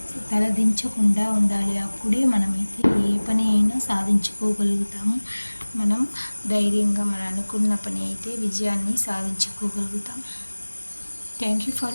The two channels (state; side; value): inverted; both; correlation -1.00